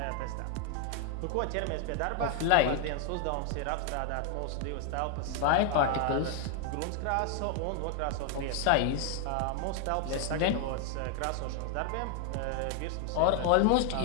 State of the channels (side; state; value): both; different; correlation 0.00